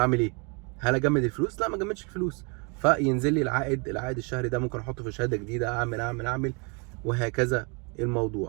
ايه؟ هل اجمد الفلوس؟ لا، ما اجمدش الفلوس. فينزل لي العائد الشهري ده، ممكن احطه في شهاده جديده، اعمل وهكذا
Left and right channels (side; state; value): left; quieter; 32.6 dB